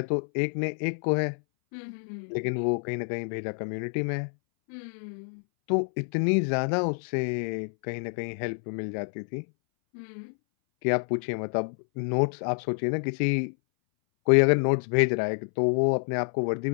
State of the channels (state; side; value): silent; right; 60 dB below the other